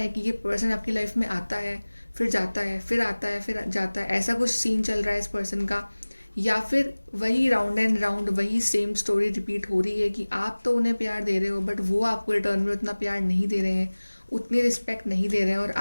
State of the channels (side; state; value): both; inverted; correlation -1.00